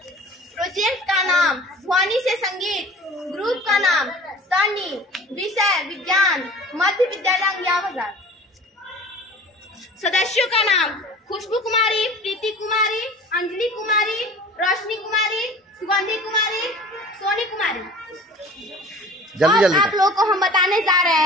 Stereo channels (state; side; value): normal; both; correlation 0.43